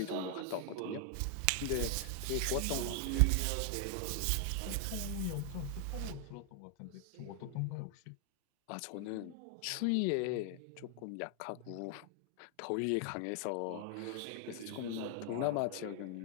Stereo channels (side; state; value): both; different; correlation 0.00